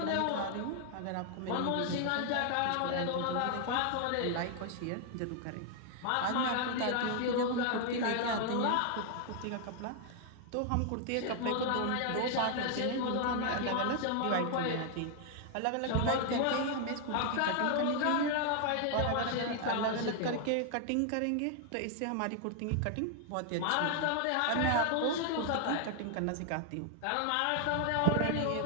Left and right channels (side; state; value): both; different; correlation 0.00